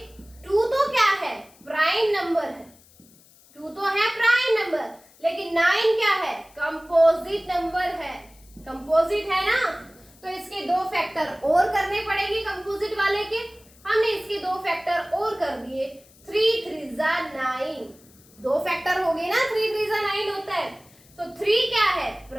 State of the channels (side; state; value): left; noise; hiss, 27 dB below the sound